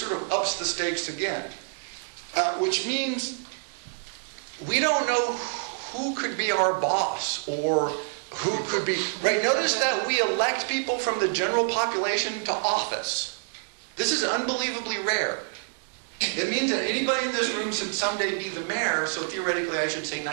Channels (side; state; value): left; silent; 60 dB below the other